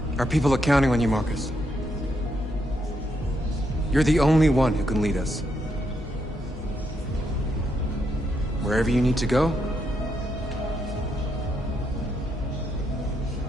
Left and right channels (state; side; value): normal; both; correlation 0.79